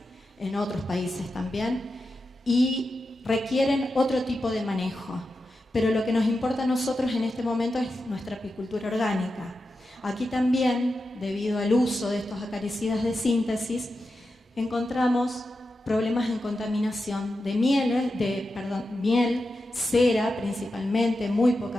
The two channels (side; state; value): both; normal; correlation 0.90